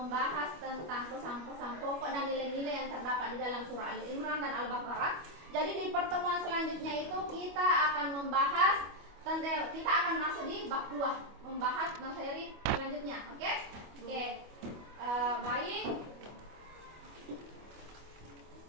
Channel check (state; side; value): late; left; 25 ms